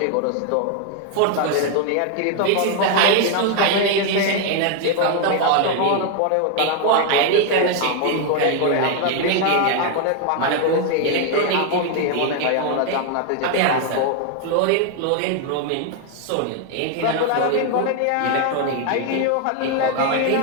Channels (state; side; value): different; both; correlation 0.01